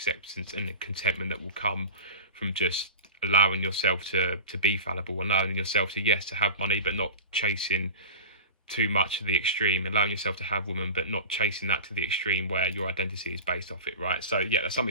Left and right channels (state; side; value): inverted; both; correlation -0.32